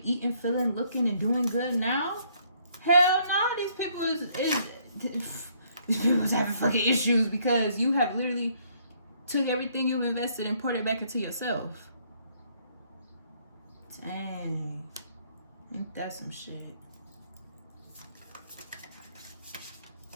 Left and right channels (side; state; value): both; inverted; correlation -0.66